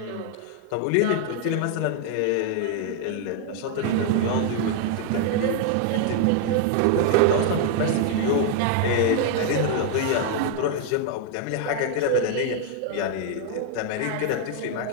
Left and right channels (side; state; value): both; different; correlation 0.00